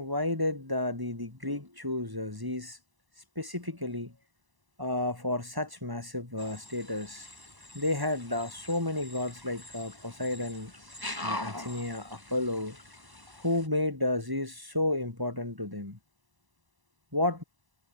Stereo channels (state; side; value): late; left; 1.0 ms